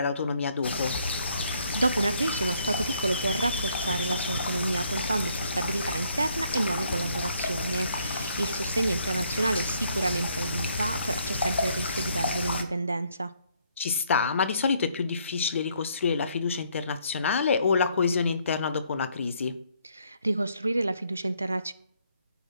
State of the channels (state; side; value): inverted; both; correlation -0.69